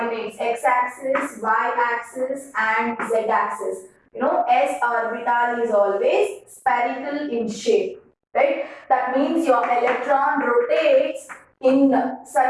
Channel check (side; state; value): both; identical; correlation 1.00